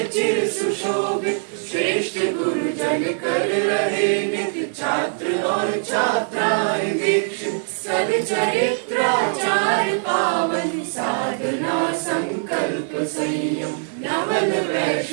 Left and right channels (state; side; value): silent; left; digital silence